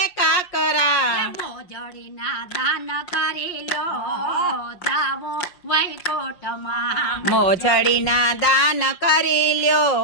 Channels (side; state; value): right; late; 5.6 ms